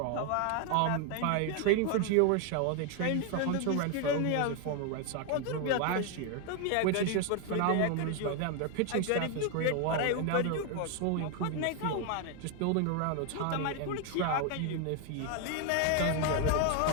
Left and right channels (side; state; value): both; different; correlation 0.00